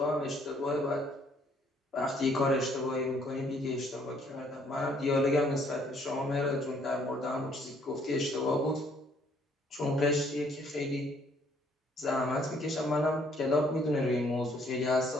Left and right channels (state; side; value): normal; both; correlation 0.65